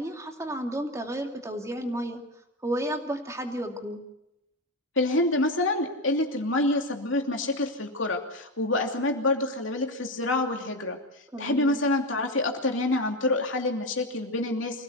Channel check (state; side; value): normal; both; correlation 0.15